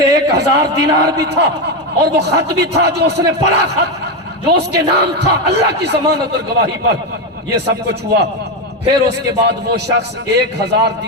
1000 دینار بھی تھا اور وہ خط بھی تھا جو اس نے پڑھا، خط جو اس کے نام تھا اللہ کی ضمانت اور گواہی پر۔ یہ سب کچھ ہوا، پھر اس کے بعد وہ شخص 1000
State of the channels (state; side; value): normal; both; correlation 0.11